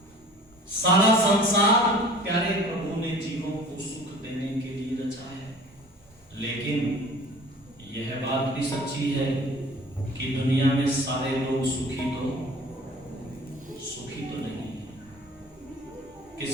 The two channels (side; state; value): both; normal; correlation 0.46